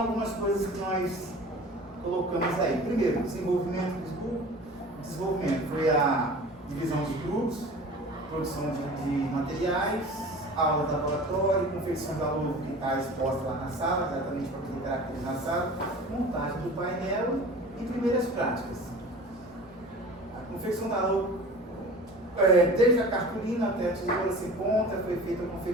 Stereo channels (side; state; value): both; normal; correlation 0.40